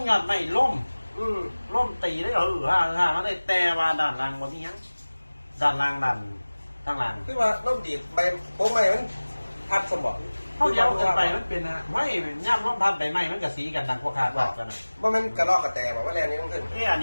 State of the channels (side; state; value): both; inverted; correlation -1.00